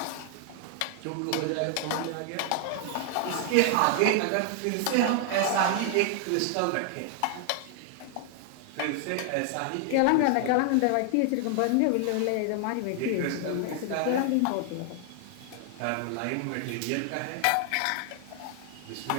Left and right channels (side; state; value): both; different; correlation 0.00